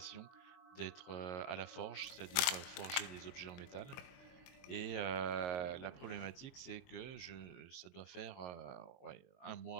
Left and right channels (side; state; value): right; late; 22 ms